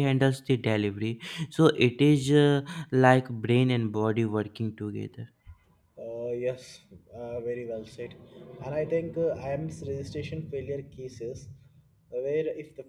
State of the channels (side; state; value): both; identical; correlation 1.00